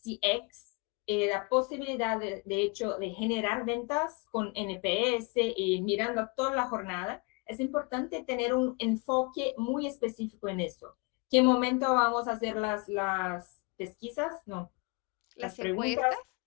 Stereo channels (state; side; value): quieter; right; 29.8 dB